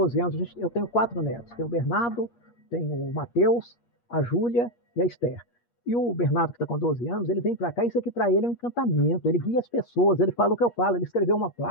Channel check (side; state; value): right; late; 8.4 ms